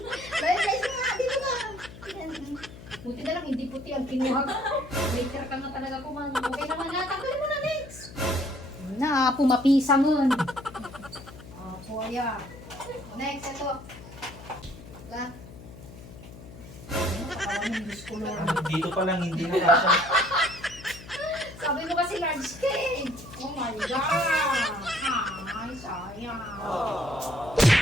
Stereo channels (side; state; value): left; noise; hum, 16 dB below the sound